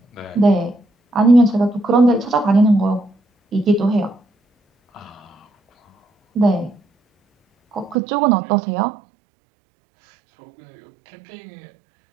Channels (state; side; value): drops out; left; at 8.0 s